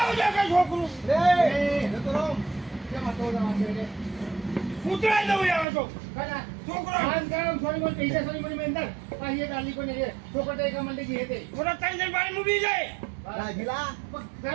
છોકરું રે તો રમ કેમ તો રમો છે ઉતરાઈ દઉં યાર તો કના છોકરો આન કામ સોરી બોલ પૈસા સોરી બોલ મેંદર પાહિએ ડાલી કોને રે છોકરો તે કમંડે જી હેતે મોટા ત્રણ જણ બારી મૂકી જાય રાજીલા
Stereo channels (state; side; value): drops out; left; at 5.7 s